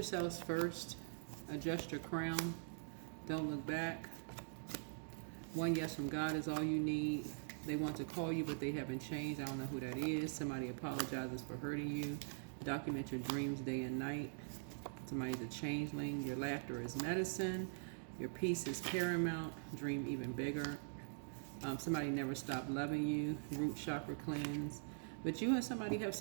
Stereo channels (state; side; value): silent; left; digital silence